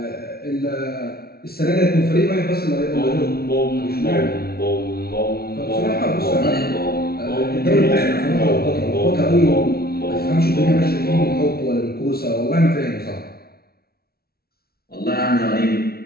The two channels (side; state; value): right; late; 0.44 ms